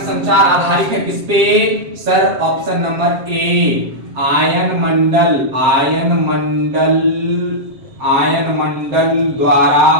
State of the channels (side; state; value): left; late; 7.5 ms